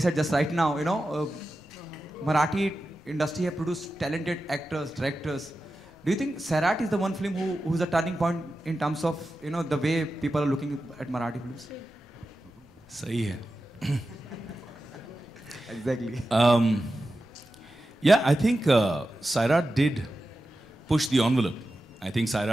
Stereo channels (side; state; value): both; normal; correlation 0.92